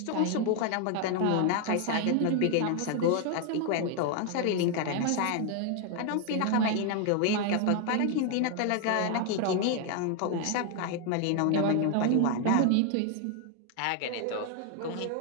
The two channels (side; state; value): both; different; correlation 0.00